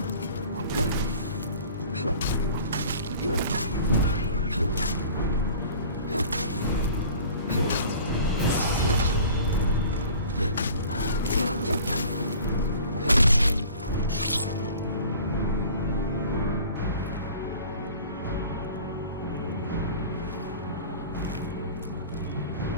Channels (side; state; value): both; inverted; correlation -0.45